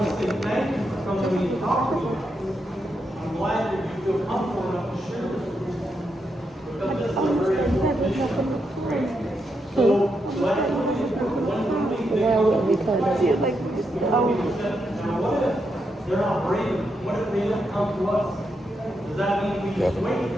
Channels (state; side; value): normal; both; correlation 0.83